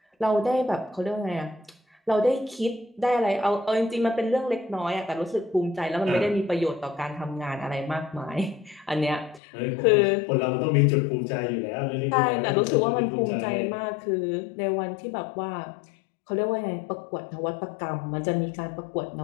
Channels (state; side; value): drops out; right; at 9.4 s